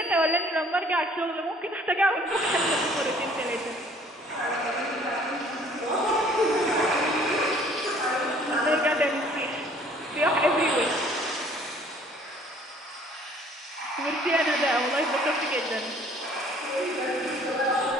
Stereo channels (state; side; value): normal; both; correlation 0.56